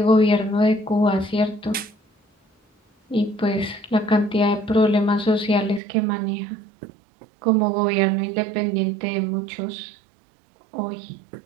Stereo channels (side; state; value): left; drops out; at 5.8 s